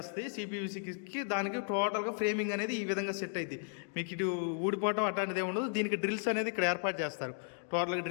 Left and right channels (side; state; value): right; silent; digital silence